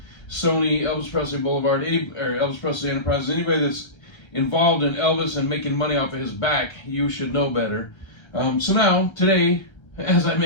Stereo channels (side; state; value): right; late; 1.3 ms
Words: Sony, Elvis Presley Boulevard, or Elvis Presley Enterprises, anybody that's involved in Elvis and making money off of his back, you should know better. So now, today, as I